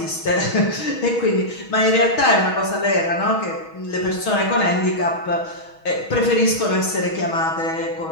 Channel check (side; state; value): right; late; 6.3 ms